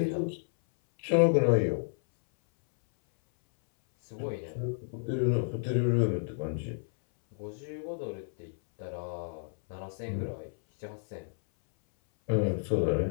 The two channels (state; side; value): silent; right; 57 dB below the other